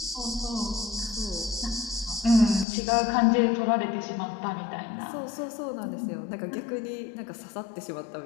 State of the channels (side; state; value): right; drops out; at 2.7 s